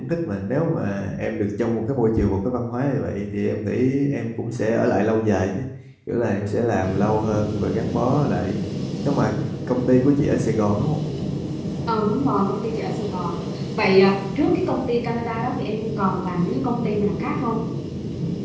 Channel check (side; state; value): both; identical; correlation 1.00